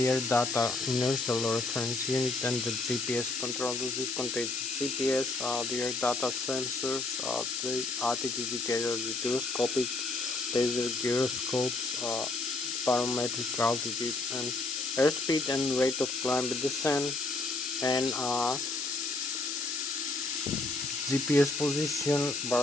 air data inertial reference unit and the GPS controller. This contains the GPS, the air data sensors, the altitude indicator, the gyroscopic laser gyroscopes, barometric altitude and airspeed and rate of climb and descent, and GPS position,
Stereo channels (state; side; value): noise; left; hiss, 2 dB below the sound